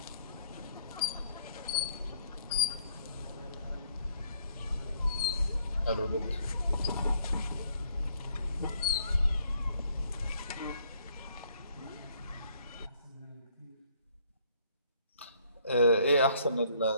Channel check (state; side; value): inverted; both; correlation -0.64